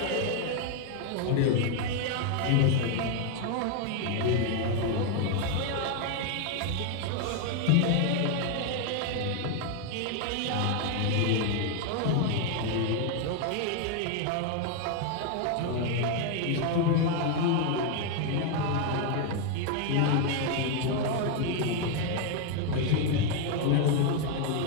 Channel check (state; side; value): different; both; correlation 0.01